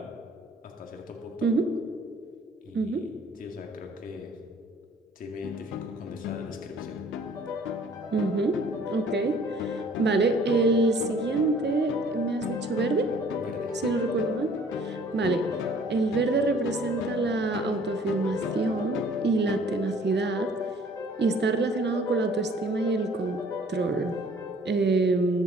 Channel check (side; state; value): both; normal; correlation 0.54